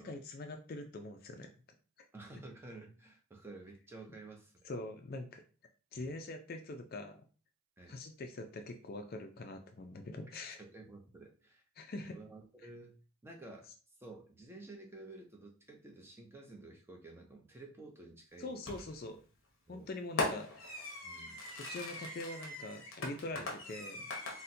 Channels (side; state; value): both; normal; correlation 0.13